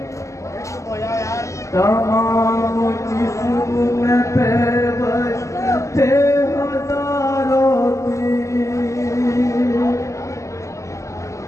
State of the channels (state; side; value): late; right; 0.15 ms